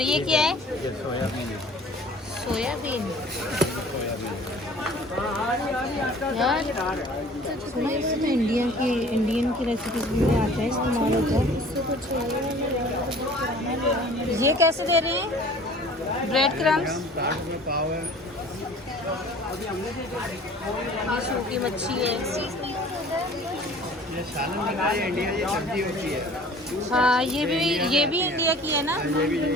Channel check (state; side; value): normal; both; correlation 0.47